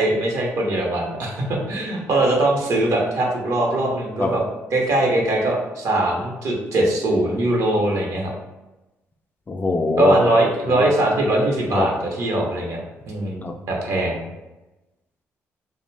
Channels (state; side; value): normal; both; correlation 0.70